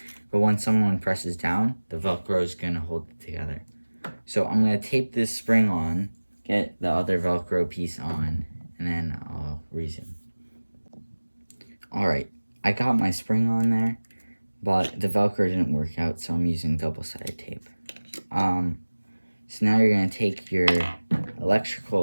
but when someone presses down, the Velcro is gonna hold it together. So I'm gonna tape this spring on, get the other Velcro piece on, and then I'll resume. Alright, I got my spring on there, but the Velcro didn't work out, so I'm using double-sided tape. So now you're going to take your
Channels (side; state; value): both; inverted; correlation -1.00